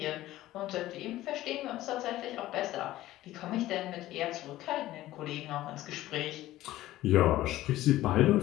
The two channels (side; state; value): right; quieter; 15.5 dB